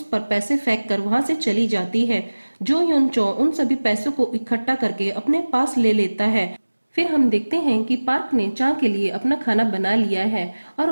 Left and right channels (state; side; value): inverted; both; correlation -1.00